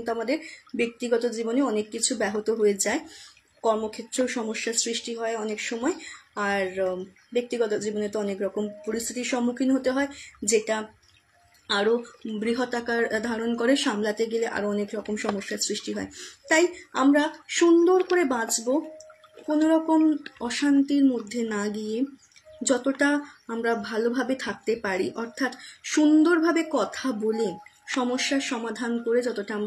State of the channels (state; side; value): identical; both; correlation 1.00